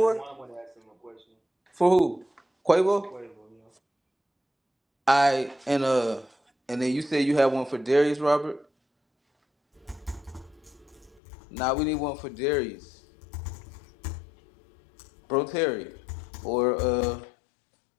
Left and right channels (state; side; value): drops out; right; at 11.2 s